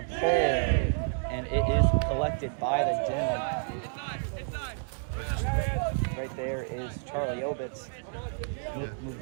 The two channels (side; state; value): left; silent; digital silence